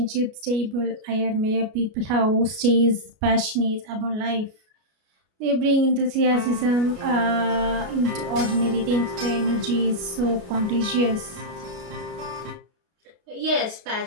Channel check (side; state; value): left; late; 33 ms